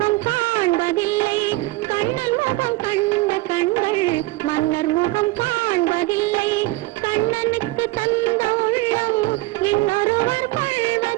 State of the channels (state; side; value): quieter; left; 20.2 dB